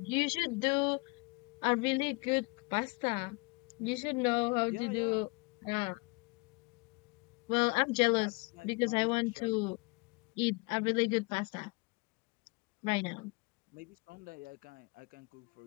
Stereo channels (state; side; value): quieter; right; 28.3 dB